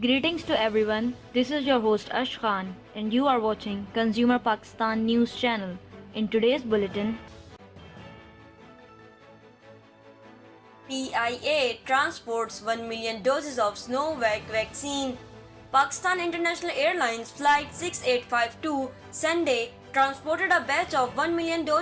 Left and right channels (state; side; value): identical; both; correlation 1.00